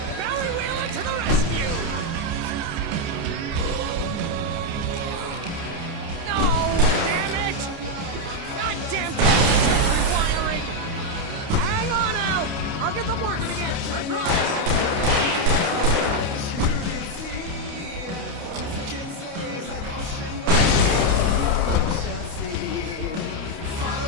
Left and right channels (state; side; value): late; left; 29 ms